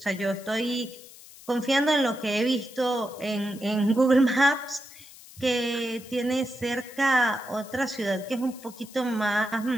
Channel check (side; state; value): left; noise; hiss, 19 dB below the sound